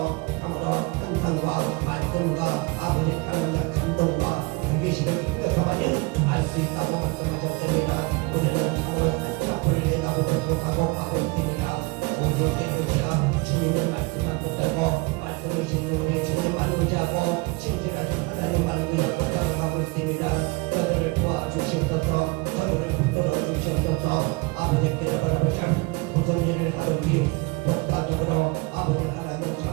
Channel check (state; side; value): quieter; left; 26.1 dB